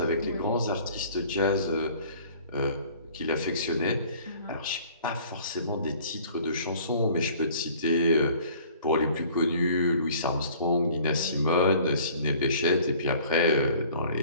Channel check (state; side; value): inverted; both; correlation -0.52